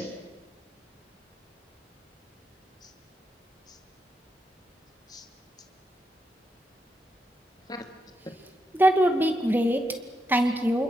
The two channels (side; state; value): both; normal; correlation 0.83